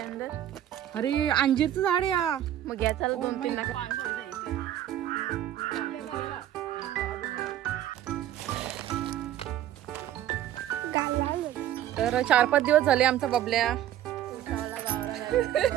अरे अंजीरचं झाड आहे या. मग या चला 2-3 लाख. तर 4-5 दिवस झाले आमचा बबल्या.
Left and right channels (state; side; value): quieter; left; 11.9 dB